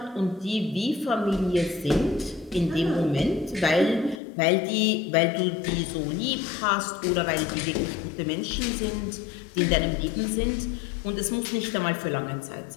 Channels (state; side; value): drops out; right; at 4.2 s